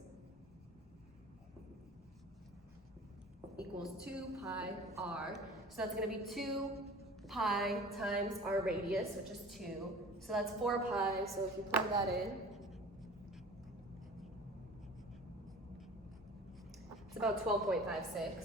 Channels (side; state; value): both; normal; correlation 0.42